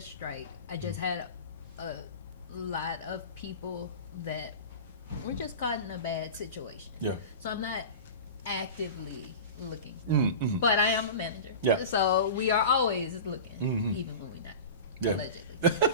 I just had a lot of people that were just caught in a bad situation. Yeah. So I'm not actively looking, Mm-hmm. but I am a manager. Yeah. So we are always looking, Mm-hmm. even when we're not. Yeah.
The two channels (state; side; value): inverted; both; correlation -0.32